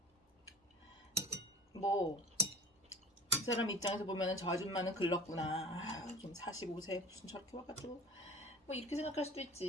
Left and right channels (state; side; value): normal; both; correlation 0.41